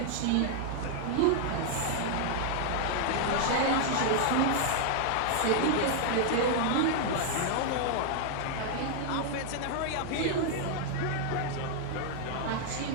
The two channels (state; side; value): different; both; correlation -0.01